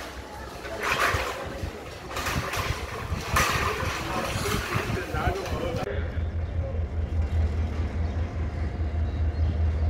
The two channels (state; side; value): identical; both; correlation 1.00